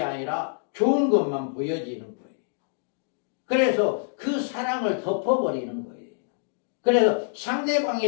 아니라 좋은 것만 보여지는 거예요. 그래서 그 사랑을 덮어버리는 거예요. 그래서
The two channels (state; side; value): silent; right; digital silence